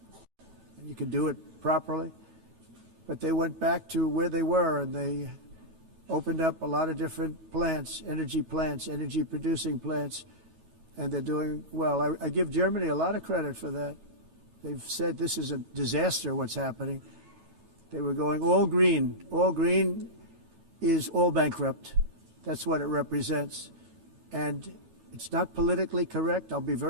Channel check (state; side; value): late; left; 13 ms